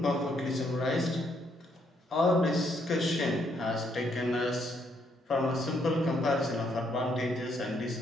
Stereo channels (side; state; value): both; normal; correlation 0.73